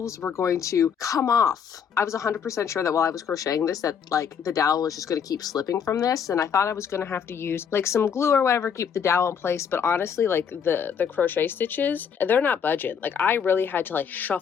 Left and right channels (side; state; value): right; quieter; 7.3 dB